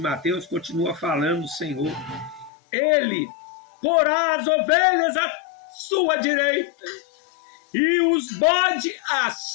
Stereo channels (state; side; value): drops out; right; at 2.5 s